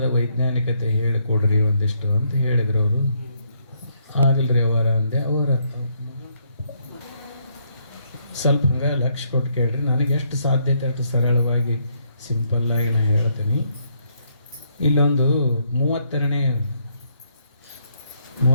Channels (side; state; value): both; inverted; correlation -0.73